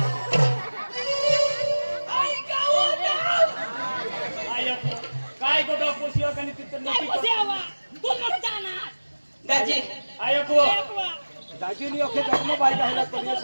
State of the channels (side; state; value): both; inverted; correlation -1.00